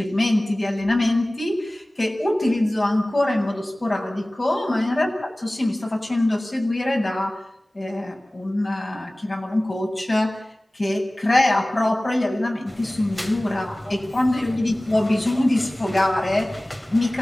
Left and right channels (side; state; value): both; normal; correlation 0.98